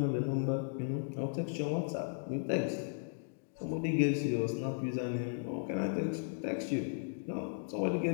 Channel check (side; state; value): right; silent; digital silence